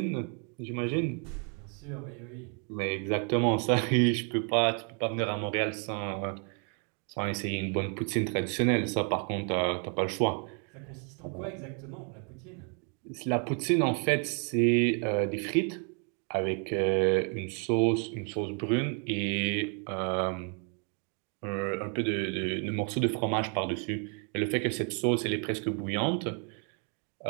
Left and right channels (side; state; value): left; quieter; 39.7 dB